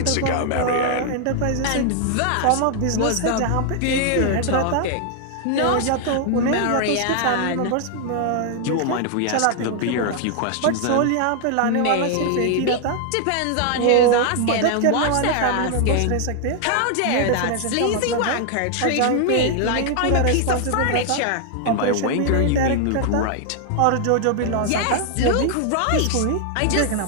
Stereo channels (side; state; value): both; different; correlation 0.00